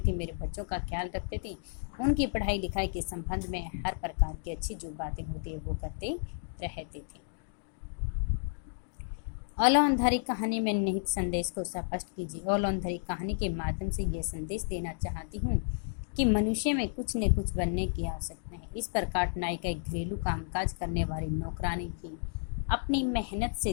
थे, मेरे बच्चों का ख्याल रखते थे। उनकी पढ़ाई लिखाई के संबंध में हर प्रकार की अच्छी जो बातें होती है वो करते रहते थे। औलांधारी कहानी में निहित संदेश को स्पष्ट कीजिए। औलांधारी कहानी के माध्यम से यह संदेश देना चाहती हूँ कि मनुष्य में कुछ न कुछ बनने की आवश्यकता है। इस प्रकार नायिका एक घरेलू कामकाज करने वाली नौकरानी भी अपनी मेहनत से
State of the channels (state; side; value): silent; right; digital silence